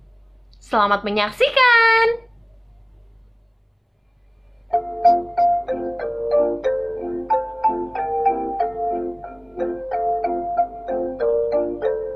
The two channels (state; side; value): identical; both; correlation 1.00